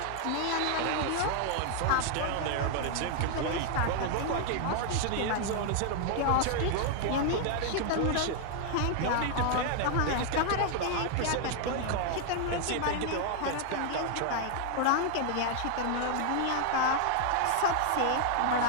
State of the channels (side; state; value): both; different; correlation 0.00